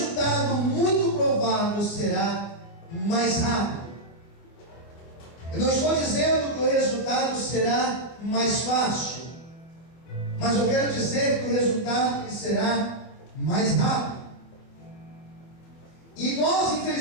muito provável será mais rápido. Eu não estou dizendo que o resultado será mais fácil, mas eu quero dizer que o resultado será mais rápido. E nós,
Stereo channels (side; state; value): right; late; 24 ms